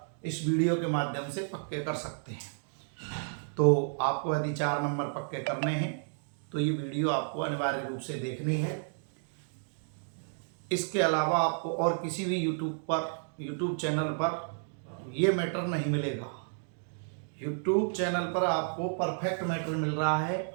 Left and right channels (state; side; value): silent; left; digital silence